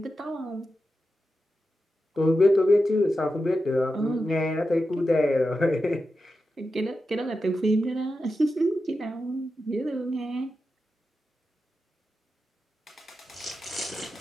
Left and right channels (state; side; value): normal; both; correlation 0.90